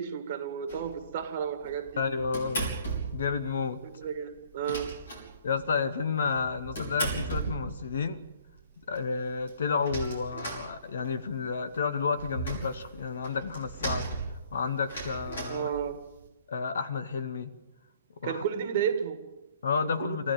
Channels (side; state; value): both; inverted; correlation -0.59